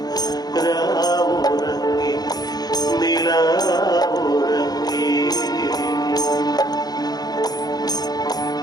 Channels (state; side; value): late; right; 0.19 ms